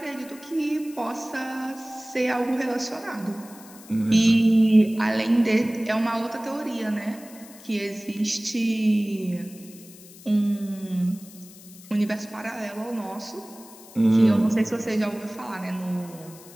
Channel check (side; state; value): left; noise; hiss, 20 dB below the sound